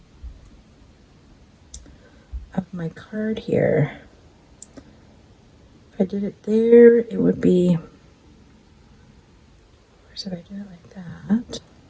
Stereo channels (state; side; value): identical; both; correlation 1.00